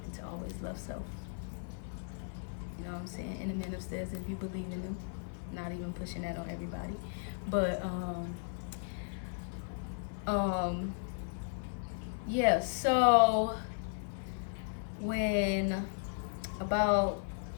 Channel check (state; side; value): silent; right; 54 dB below the other